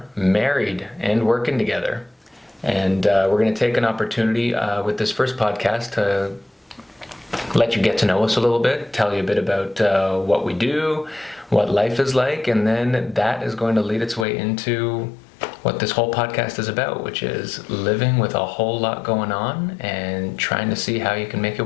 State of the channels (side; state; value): right; drops out; at 14.2 s